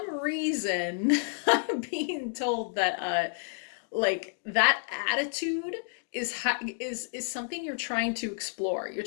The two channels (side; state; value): right; silent; digital silence